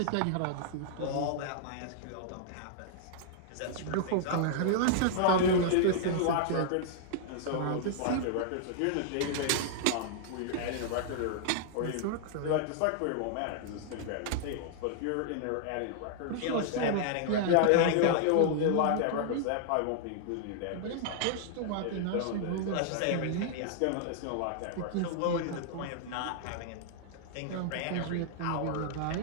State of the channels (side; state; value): both; different; correlation -0.01